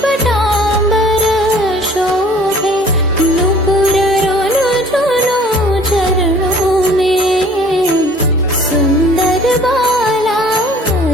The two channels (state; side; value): normal; both; correlation 0.52